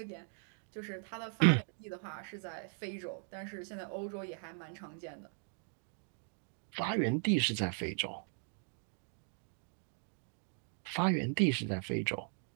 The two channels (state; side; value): silent; left; 52 dB below the other